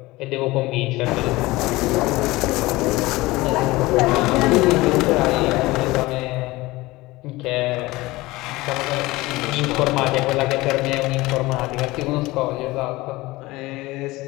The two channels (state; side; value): quieter; right; 20.1 dB